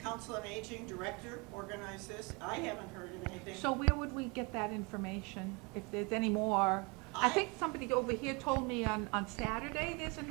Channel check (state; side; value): quieter; left; 29.5 dB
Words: Council on Aging director organized this. I haven't heard of anything. So where would we get that information, if there's any more? I think somebody over here told me on Saturday there's